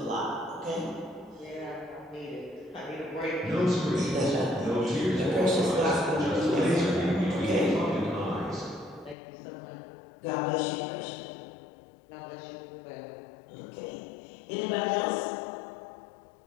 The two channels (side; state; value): right; drops out; at 9.2 s